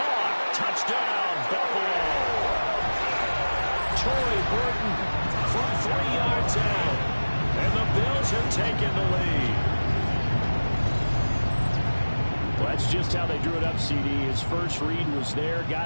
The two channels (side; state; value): both; inverted; correlation -1.00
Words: Touchdown, Buffalo. Troy Horton from 3 yards out. And the Bills have taken the lead. Well, that's just how they drew it up, CD. His first read was there,